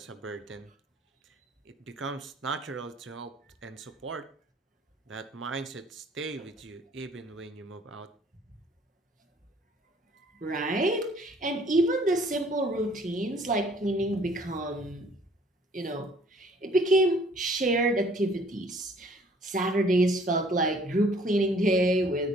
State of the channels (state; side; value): normal; both; correlation 0.57